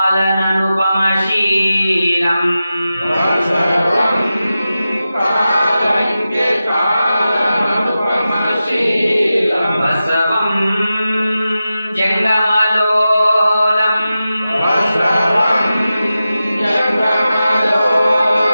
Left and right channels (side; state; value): both; inverted; correlation -0.93